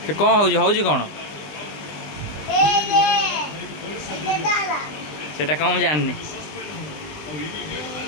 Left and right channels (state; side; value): late; right; 20 ms